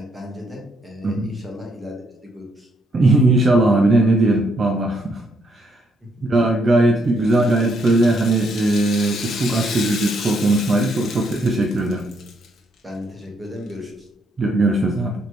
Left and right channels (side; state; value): both; normal; correlation 0.74